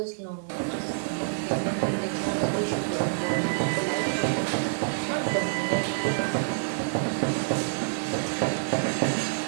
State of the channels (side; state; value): left; silent; digital silence